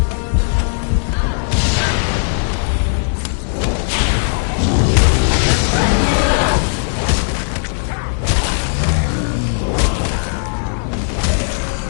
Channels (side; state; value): right; silent; digital silence